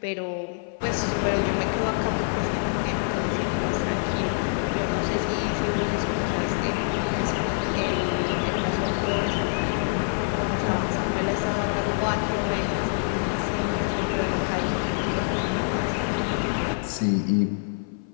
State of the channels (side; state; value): right; silent; 56 dB below the other